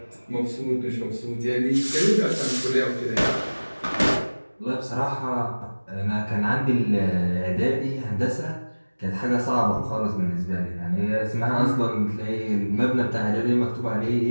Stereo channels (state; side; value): inverted; both; correlation -1.00